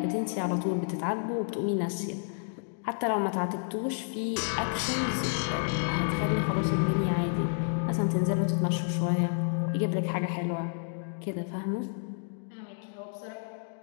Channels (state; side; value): silent; right; digital silence